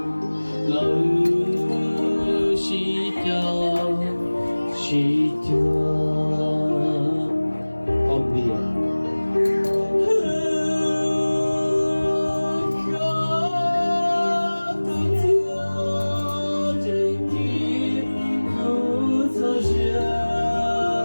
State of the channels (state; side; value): inverted; both; correlation -1.00